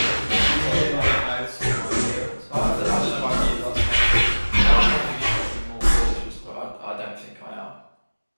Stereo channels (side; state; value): both; inverted; correlation -1.00